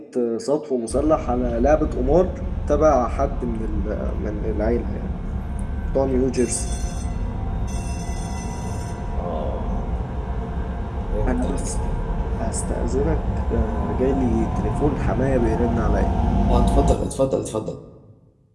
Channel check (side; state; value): both; identical; correlation 1.00